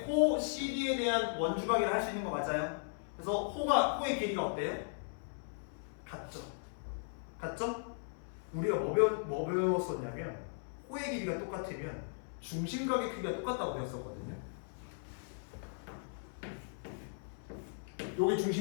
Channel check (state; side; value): silent; right; 53 dB below the other